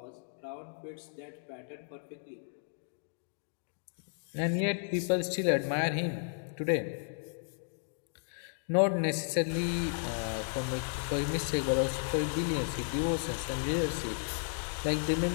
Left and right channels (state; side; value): silent; right; digital silence